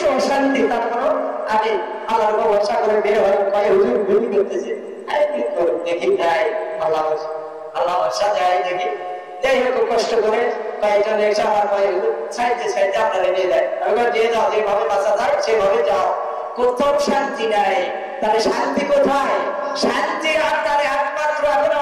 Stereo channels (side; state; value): both; identical; correlation 1.00